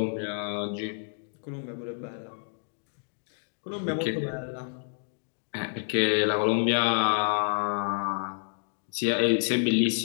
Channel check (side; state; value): right; silent; digital silence